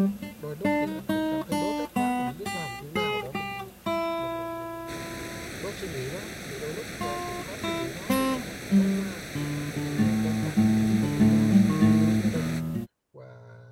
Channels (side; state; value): both; identical; correlation 1.00